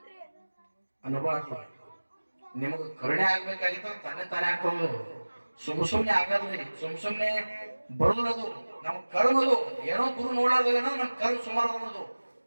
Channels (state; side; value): inverted; both; correlation -1.00